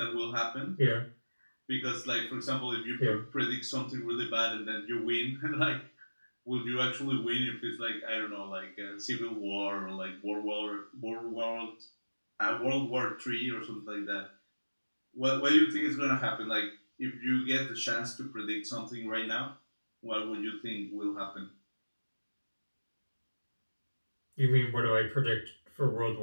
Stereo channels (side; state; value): both; inverted; correlation -1.00